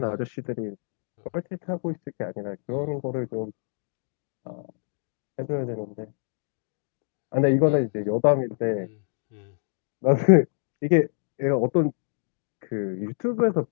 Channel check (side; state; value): right; silent; digital silence